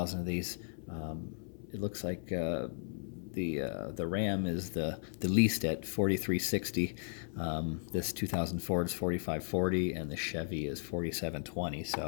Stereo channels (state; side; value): silent; right; 54 dB below the other